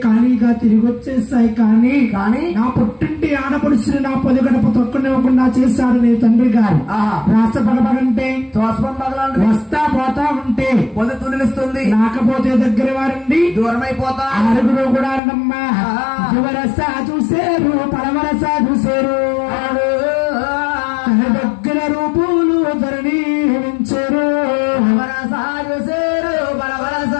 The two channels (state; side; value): drops out; right; at 15.2 s